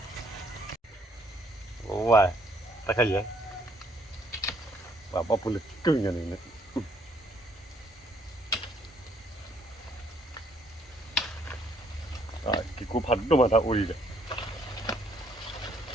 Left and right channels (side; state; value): both; normal; correlation 0.66